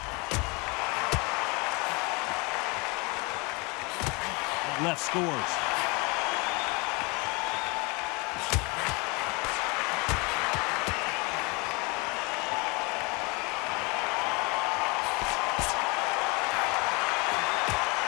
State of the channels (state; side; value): quieter; right; 28.2 dB